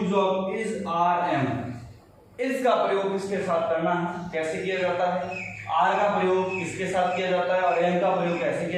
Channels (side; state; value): both; identical; correlation 1.00